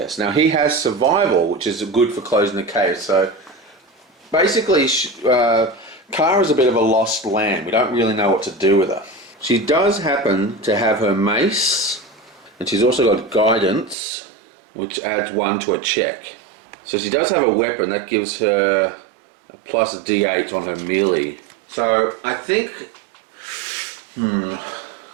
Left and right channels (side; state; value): left; drops out; at 14.0 s